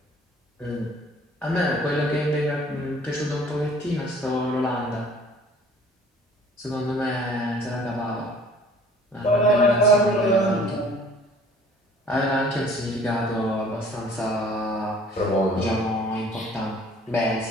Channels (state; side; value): normal; both; correlation 0.52